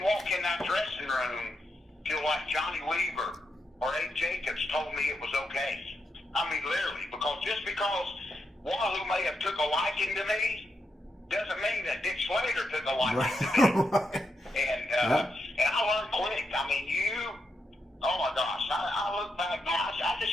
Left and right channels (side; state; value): both; normal; correlation 0.84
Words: walk in that dressing room till like Johnny Weaver or Abe Jacobs told me it was okay. I mean, literally, just because Wahoo may have took a liking to me doesn't mean that Dick Slater took a liking to me. And I learned quick. I mean, oh my gosh, I look back now. I